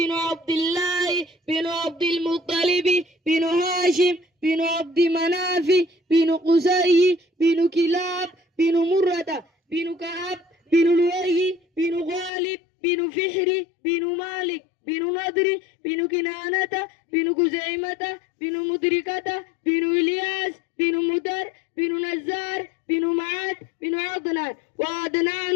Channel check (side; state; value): right; drops out; at 12.3 s